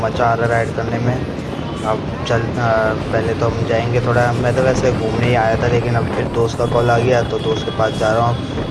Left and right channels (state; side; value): identical; both; correlation 1.00